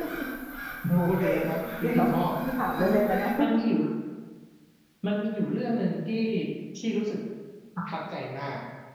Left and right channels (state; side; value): identical; both; correlation 1.00